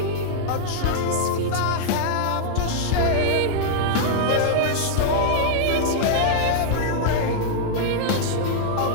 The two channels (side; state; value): both; different; correlation -0.01